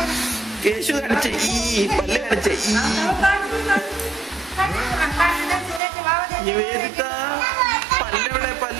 കേശു കാണിച്ച ഈ പല്ല് കാണിച്ച നിവേദിത പല്ലെവിടെ?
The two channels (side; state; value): left; drops out; at 5.8 s